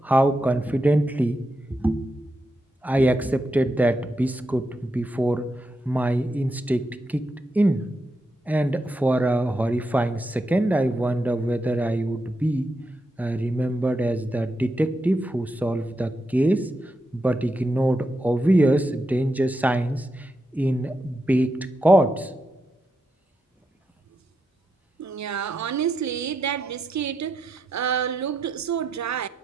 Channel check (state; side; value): normal; both; correlation 0.85